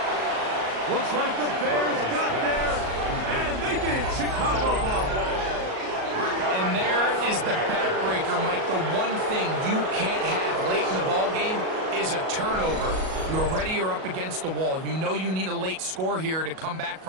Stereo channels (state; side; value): late; left; 37 ms